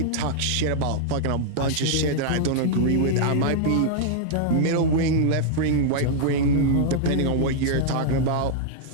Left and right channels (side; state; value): both; different; correlation -0.02